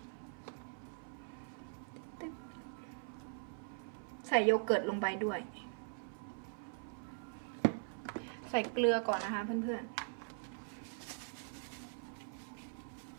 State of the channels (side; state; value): left; silent; 50 dB below the other